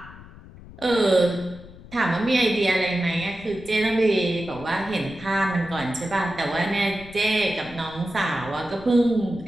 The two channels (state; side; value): noise; left; rumble, 18 dB below the sound